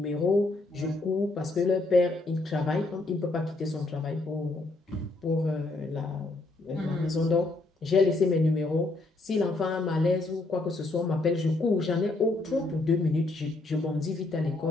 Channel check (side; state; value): right; quieter; 3.0 dB